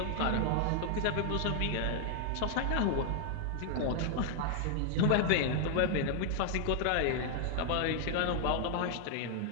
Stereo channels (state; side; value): different; both; correlation 0.00